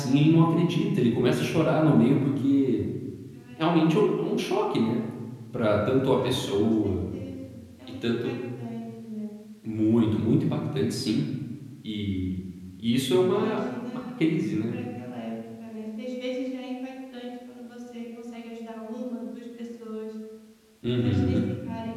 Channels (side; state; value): both; identical; correlation 1.00